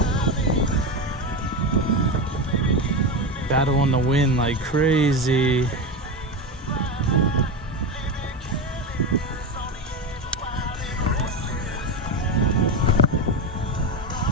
Battle in the wind like crazy.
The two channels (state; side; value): normal; both; correlation 0.18